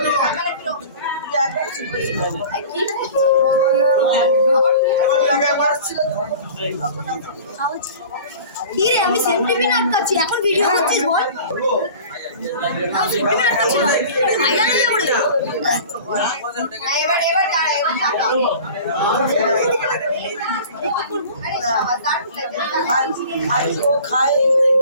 কি রে আমি সেম টিভি আটকাচ্ছি এখন ভিডিও করছিস বল আমি সেম টিভি আটকাচ্ছি না ভাইরাল হয়ে যাবে এবার এবার দাঁড়া এবার টাকা খাই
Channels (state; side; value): inverted; both; correlation -0.41